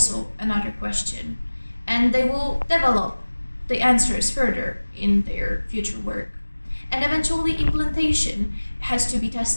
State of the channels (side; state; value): both; inverted; correlation -1.00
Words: another question, and they will develop the answers further in their future work. And eventually implantation has to be